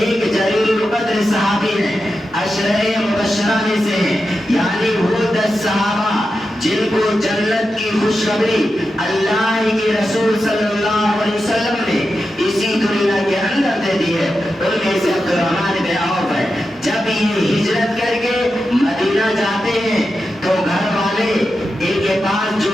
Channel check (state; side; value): normal; both; correlation 0.90